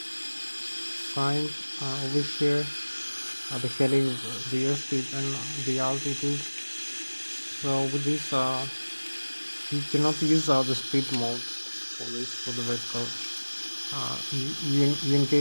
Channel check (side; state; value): both; inverted; correlation -1.00